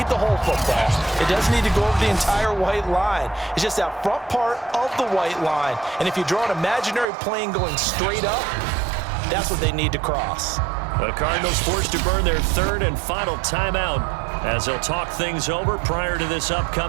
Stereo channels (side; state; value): left; drops out; at 7.1 s